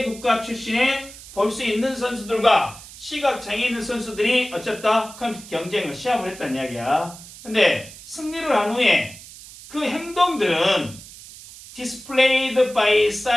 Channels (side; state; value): right; noise; hiss, 17 dB below the sound